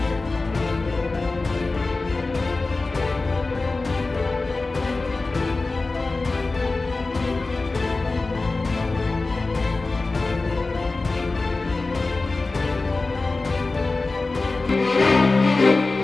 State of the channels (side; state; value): right; quieter; 3.5 dB